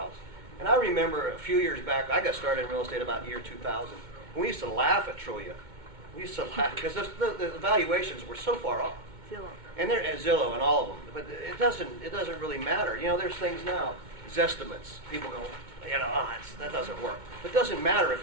And I remember a few years back, I got started in real estate about year 2000. And we used to laugh at Trulia. We used to laugh because the valuations were so far off. Zillow. And they're at Zillow and all of them, but it doesn't really matter. There's things now, Zestimates. People go, that doesn't work. But it doesn't matter if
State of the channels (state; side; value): late; left; 2.2 ms